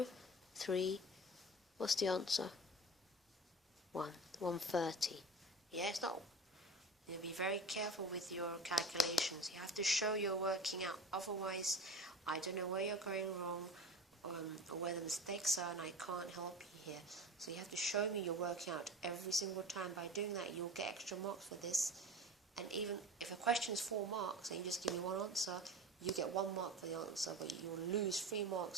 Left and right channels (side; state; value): both; normal; correlation 0.34